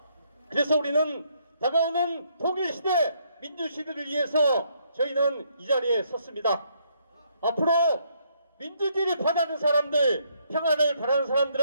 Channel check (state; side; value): inverted; both; correlation -0.71